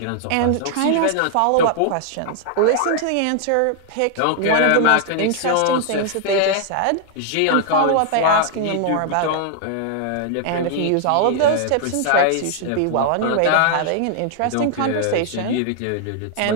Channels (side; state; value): both; different; correlation 0.00